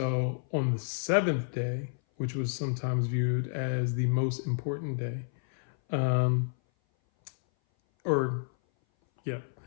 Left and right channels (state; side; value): silent; right; 57 dB below the other